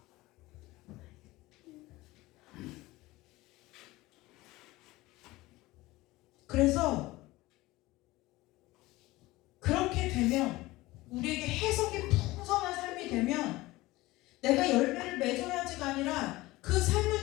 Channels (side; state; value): right; quieter; 19.4 dB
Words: 그래서 그렇게 되면 열매를 맺어야지가 아니라 그